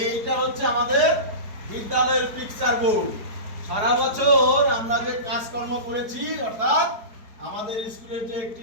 হচ্ছে আমাদের বিদ্যালয়ের পিকচার বোর্ড। সারা বছর আমরা যে কাজকর্ম করেছি, অর্থাৎ আমাদের স্কুলের যে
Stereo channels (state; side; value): late; left; 4.6 ms